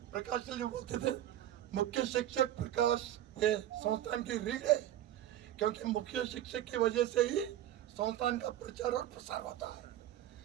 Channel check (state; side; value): quieter; left; 12.4 dB